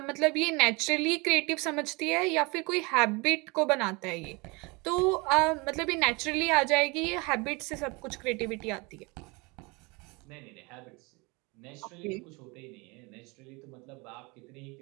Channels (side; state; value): left; quieter; 27.3 dB